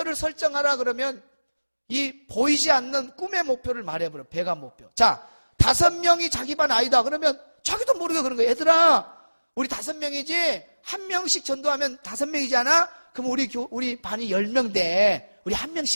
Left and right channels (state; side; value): inverted; both; correlation -1.00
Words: 설정하라 그러면 이 보이지 않는 꿈의 목표를 말해버려. 배가 목표. 자, 5명이 자기 반 아이다 그러면 자기도 모르게 그런 거예요. 얘들아, 우리 5명이지 1명씩 전도하면 5명이잖아. 그럼 우리 반이 10명 우리